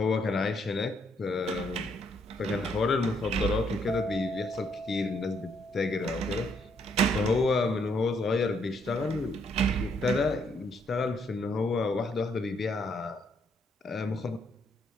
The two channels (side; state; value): both; normal; correlation 0.72